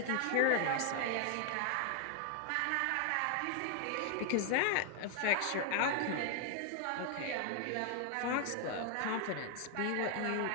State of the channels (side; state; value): both; different; correlation 0.00